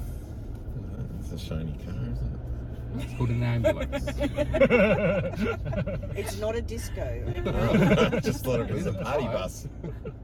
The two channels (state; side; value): identical; both; correlation 1.00